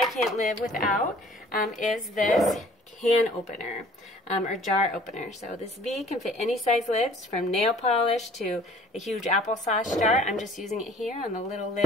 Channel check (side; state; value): both; normal; correlation 0.52